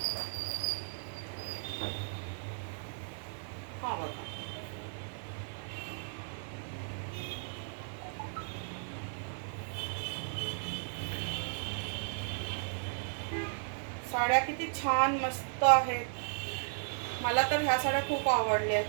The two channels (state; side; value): silent; left; 54 dB below the other